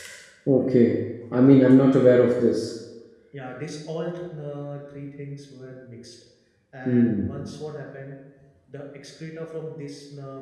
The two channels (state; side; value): identical; both; correlation 1.00